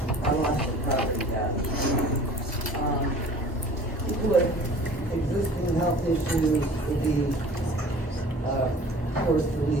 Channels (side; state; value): both; normal; correlation 0.46